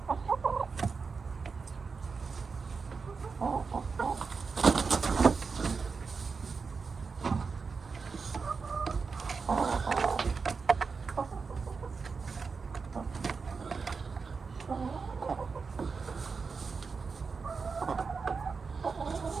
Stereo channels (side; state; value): left; quieter; 5.0 dB